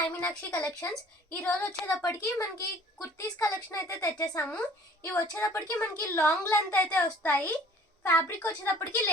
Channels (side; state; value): both; normal; correlation 0.52